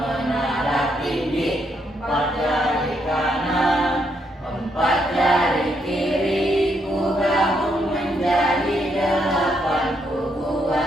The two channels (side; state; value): both; normal; correlation 0.76